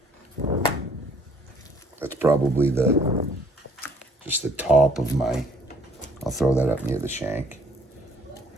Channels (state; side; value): normal; both; correlation 0.60